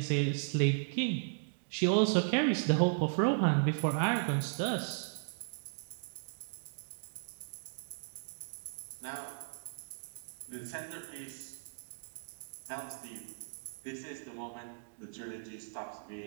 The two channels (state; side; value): silent; left; digital silence